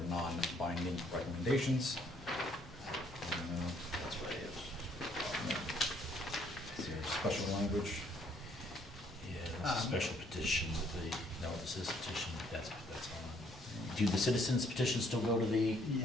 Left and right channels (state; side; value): normal; both; correlation 0.66